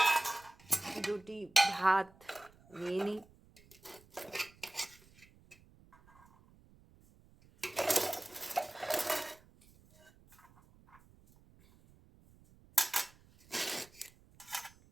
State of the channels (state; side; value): noise; right; rumble, 27 dB below the sound